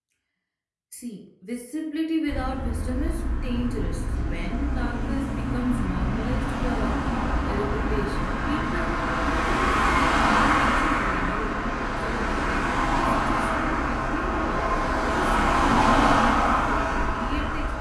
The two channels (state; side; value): identical; both; correlation 1.00